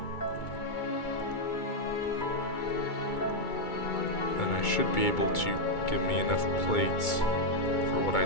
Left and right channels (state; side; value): late; right; 2.3 ms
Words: then I should be able to give me enough plates for what I